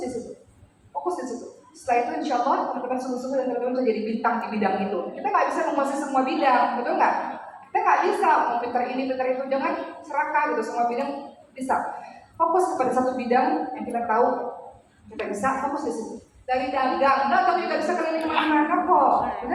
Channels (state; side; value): identical; both; correlation 1.00